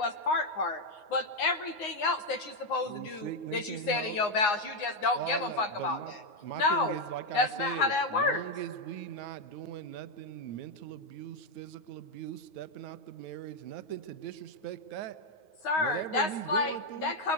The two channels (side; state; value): right; late; 9.6 ms